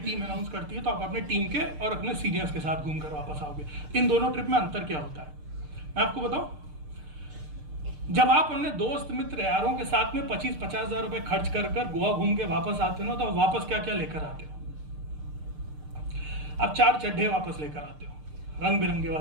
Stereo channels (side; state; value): left; late; 6.6 ms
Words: अनाउंस करती है तो आप अपने टीम के और अपने सीनियर्स के साथ घूमकर वापस आओगे। इन दोनों ट्रिप में अंतर क्या होता है मैं आपको बताऊं। जब आप अपने दोस्त मित्र यारों के साथ में 25-50 हजार रुपए खर्च कर गोवा घूम के वापस आते हो, तो वापस क्या क्या लेकर आते हो? आप 4 चड्ढे वापस लेकर आते हो, रंग बिरंगे